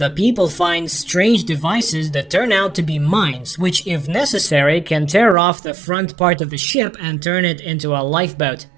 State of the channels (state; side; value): drops out; left; at 5.4 s